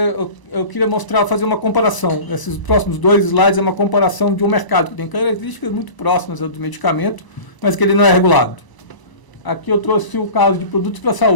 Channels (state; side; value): late; right; 1.0 ms